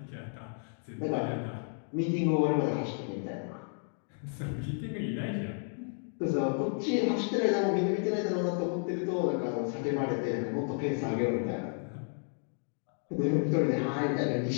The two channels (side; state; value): right; silent; 56 dB below the other